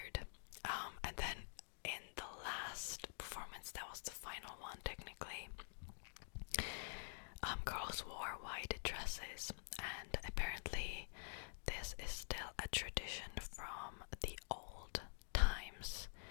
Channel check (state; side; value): silent; right; digital silence